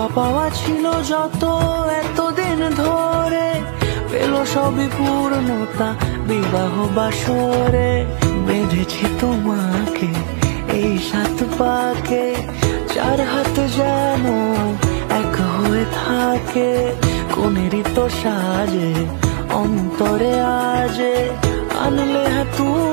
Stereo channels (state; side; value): silent; left; 63 dB below the other